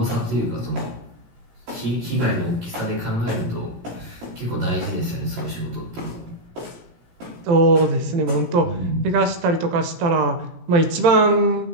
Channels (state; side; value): late; left; 18 ms